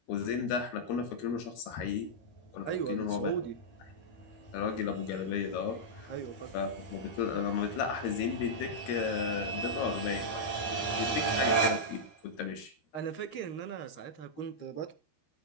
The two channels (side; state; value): right; late; 13 ms